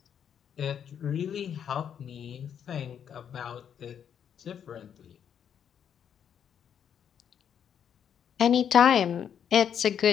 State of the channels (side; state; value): right; quieter; 8.5 dB